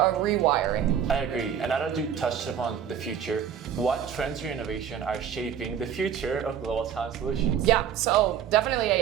rewiring. I agree. And now that you touched upon the future, what trends or innovation are shaping the future of global talent solutions? Yeah, so definitely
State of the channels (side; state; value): left; quieter; 8.7 dB